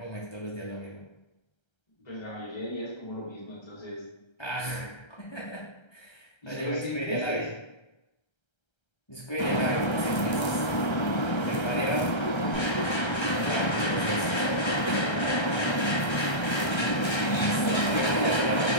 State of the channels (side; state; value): right; late; 1.3 ms